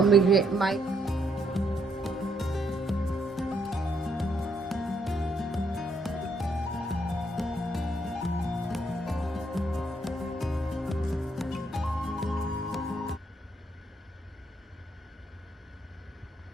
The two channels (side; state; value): both; normal; correlation 0.73